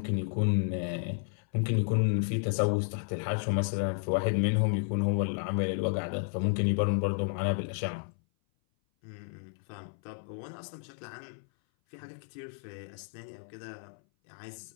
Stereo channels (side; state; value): right; silent; 56 dB below the other